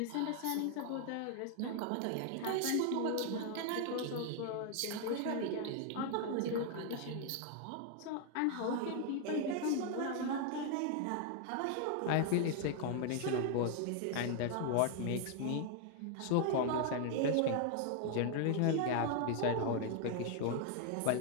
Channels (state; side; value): different; both; correlation 0.00